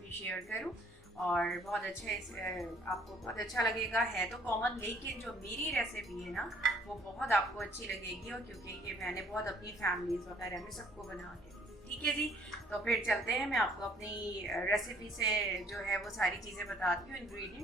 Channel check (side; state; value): both; normal; correlation 0.59